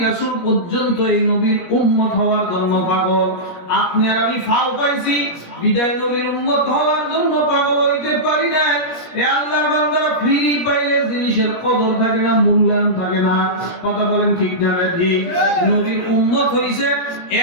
রাসূল পর্যন্ত এই নবীর উম্মত হওয়ার জন্য পাগল। আপনি আর আমি ফাও পাইছি, বিদায় নবীর উম্মত হওয়ার জন্য পাগল হইতে পারি না। এ আল্লাহর বান্দারা, ফ্রি পাইলে জিনিসের কদর থাকে না, মূল্যায়ন থাকে না। কথা বলেন ঠিক না ঠিক? নবীর উম্মত হইছে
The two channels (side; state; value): right; late; 17 ms